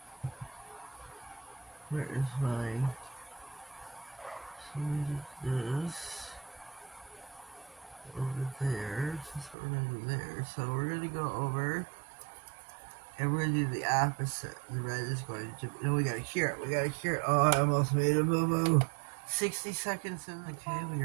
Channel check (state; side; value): drops out; left; at 9.6 s